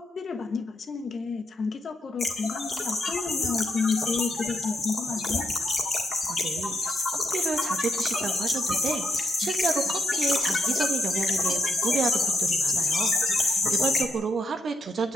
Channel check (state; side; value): normal; both; correlation 0.79